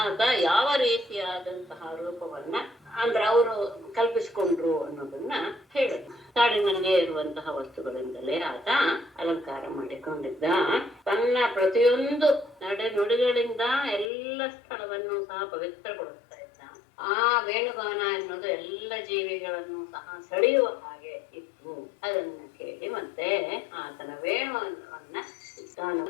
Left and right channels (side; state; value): right; drops out; at 14.1 s